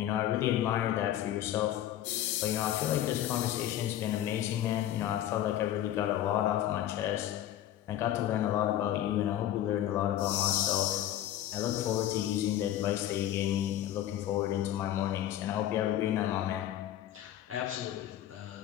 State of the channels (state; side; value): quieter; right; 12.3 dB